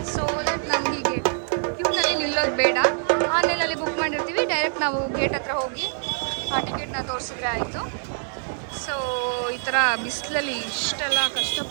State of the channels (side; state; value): left; silent; digital silence